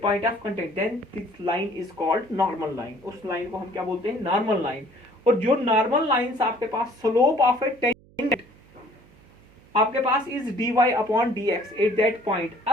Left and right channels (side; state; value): right; noise; hum, 27 dB below the sound